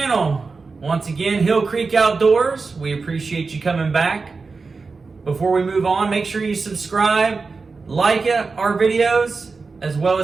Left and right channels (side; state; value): left; quieter; 4.3 dB